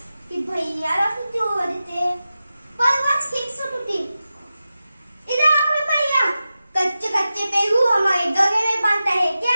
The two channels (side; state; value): both; inverted; correlation -0.93